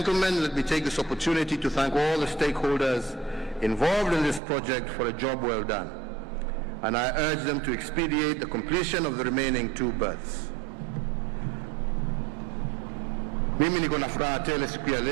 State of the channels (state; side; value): drops out; left; at 4.4 s